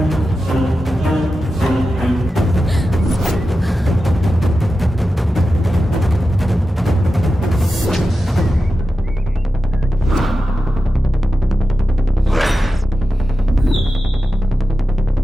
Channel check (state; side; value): normal; both; correlation 0.92